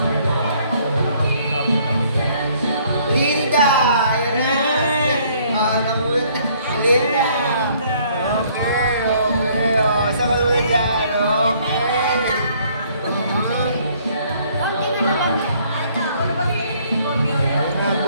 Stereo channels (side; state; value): both; inverted; correlation -0.62